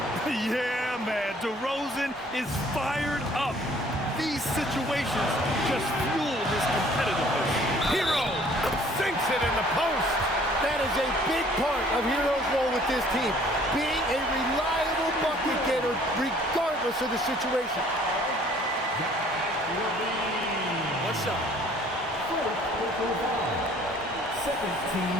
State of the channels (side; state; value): both; normal; correlation 0.56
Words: Yeah, man, DeRozan is fired up. These situations just the post. That is a big part of Hero's role with this team, being a reliable bucket getter regardless of the situation. One shot. Second team